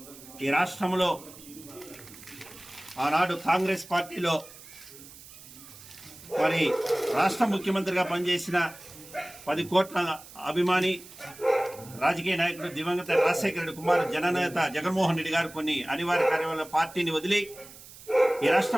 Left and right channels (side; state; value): right; noise; hiss, 18 dB below the sound